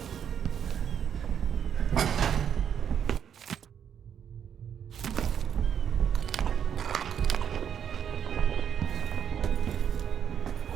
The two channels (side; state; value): left; quieter; 8.5 dB